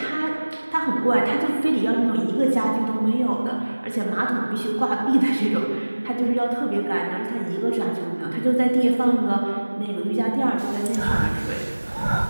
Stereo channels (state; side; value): inverted; both; correlation -1.00